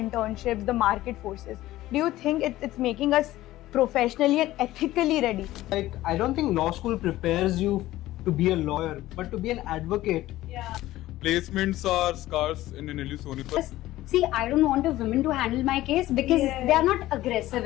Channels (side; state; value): right; quieter; 15.8 dB